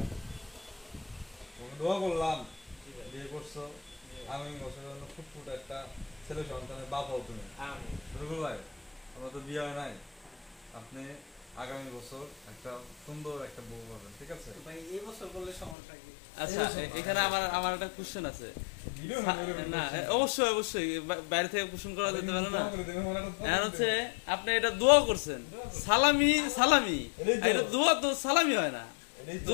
দোয়া করলাম, বিয়ে করছো, আগামী বছরের জন্য ফুটফুট একটা ছেলে সন্তানের বাপ হও তুমি। রুকুল ভাই, আমরা তো বিয়ে হয় নাই, আপনি আগামী বছর একটা সুন্দর একটা বউ পাবেন, ঠিক আছে ভাই? এই বছর বললে সমস্যা কি? আচ্ছা, এখানে আমার একটা কোশ্চেন আছে। না, অবশ্যই অবশ্যই বাইরে থেকে কোশ্চেন করা যেতে পারে না। এখন হচ্ছে আপনি এটা দোয়া করছেন, সালামি সালামি, এটা দোয়া তো সালামি হয় না।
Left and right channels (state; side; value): drops out; right; at 15.8 s